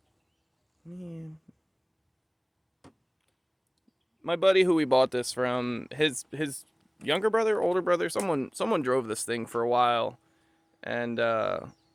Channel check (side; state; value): both; identical; correlation 1.00